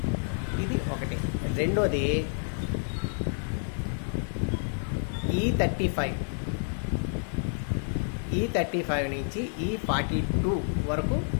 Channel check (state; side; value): silent; right; digital silence